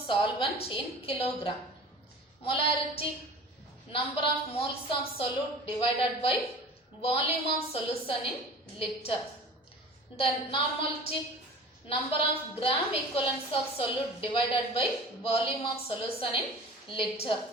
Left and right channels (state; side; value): normal; both; correlation 0.39